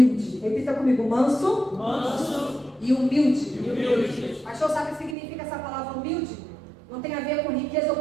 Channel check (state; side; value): drops out; left; at 5.2 s